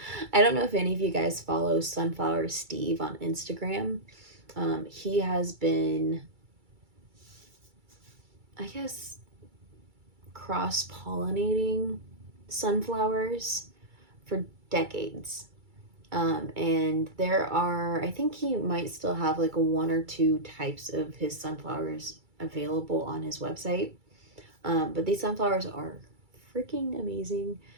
I don't know if any of you guys follow Sunflower Steve on Instagram. He has been, I guess, cross-pollinating sunflowers for decades. And there are, I think he might still have like 1 or 2 types of his sunflowers available on his website. But these sunflowers are freaking amazing.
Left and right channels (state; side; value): late; left; 2.3 ms